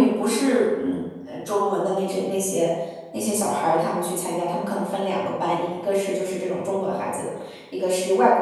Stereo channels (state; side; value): identical; both; correlation 1.00